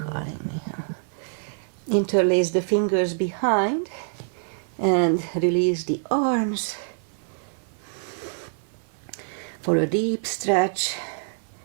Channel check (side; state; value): left; silent; 58 dB below the other